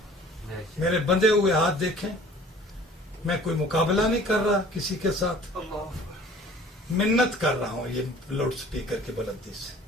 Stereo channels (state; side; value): normal; both; correlation 0.49